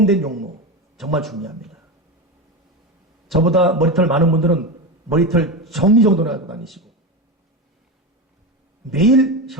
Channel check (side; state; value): both; normal; correlation 0.18